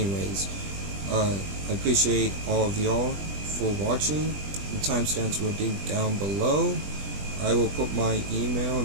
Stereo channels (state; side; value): late; left; 20 ms